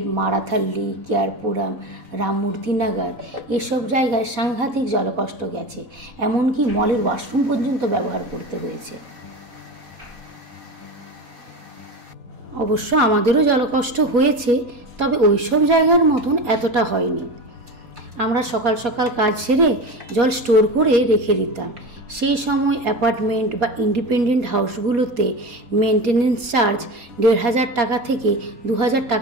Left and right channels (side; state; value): left; late; 4.2 ms